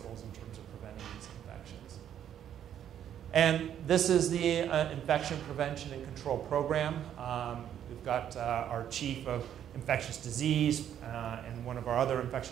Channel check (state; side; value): quieter; left; 10.0 dB